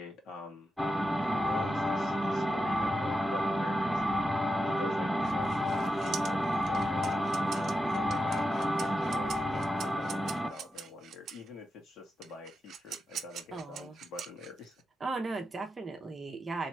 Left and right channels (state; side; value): normal; both; correlation 0.88